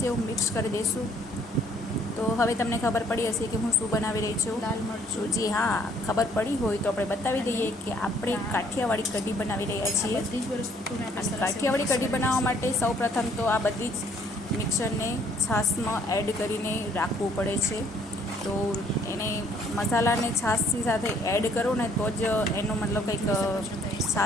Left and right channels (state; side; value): normal; both; correlation 0.62